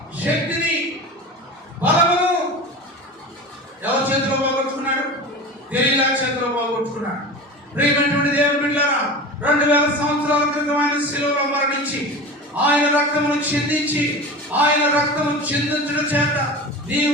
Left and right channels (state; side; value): normal; both; correlation 0.31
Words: శక్తిని, బలమును ఎవరి చేతిలో పోగొట్టుకున్నాడు? దెలీలా చేతిలో పోగొట్టుకున్నాడు. ప్రియమైనటువంటి దేవుని బిడ్డలారా, 2000 సంవత్సరాల క్రితం ఆయన శిలువలో మరణించి ఆయన రక్తమును చిందించి, ఆయన రక్తము చిందించడం చేత